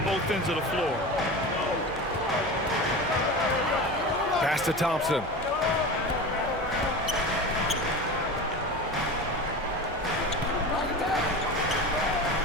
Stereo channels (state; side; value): normal; both; correlation 0.29